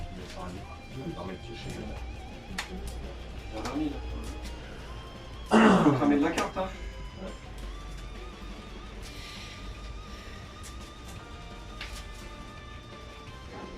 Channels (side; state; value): both; identical; correlation 1.00